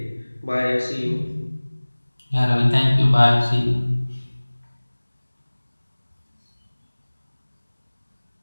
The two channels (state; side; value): inverted; both; correlation -1.00